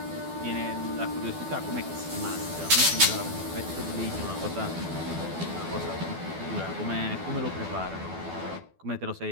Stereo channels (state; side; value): late; left; 12 ms